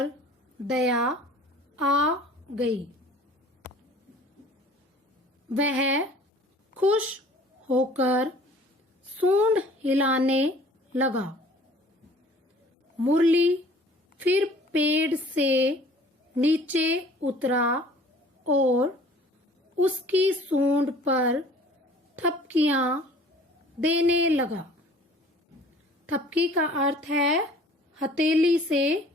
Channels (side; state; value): both; normal; correlation 0.50